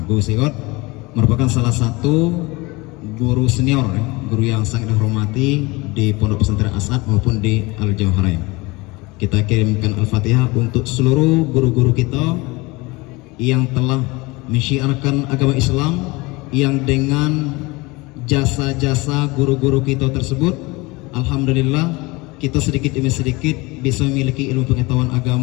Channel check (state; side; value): quieter; right; 23.8 dB